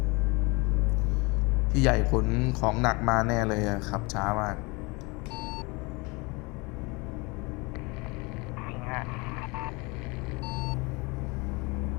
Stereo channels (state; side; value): quieter; right; 27.1 dB